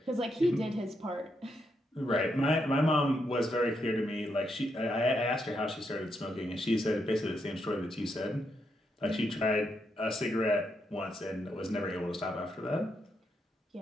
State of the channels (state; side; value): normal; both; correlation 0.80